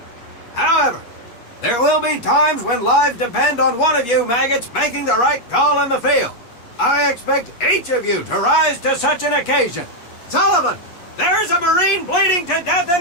However, there will be times when lives depend on one of you maggots making the right call in the field. I expect each of you to rise to such an occasion. Sullivan, there's a Marine bleeding to death in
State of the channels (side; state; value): right; late; 8.6 ms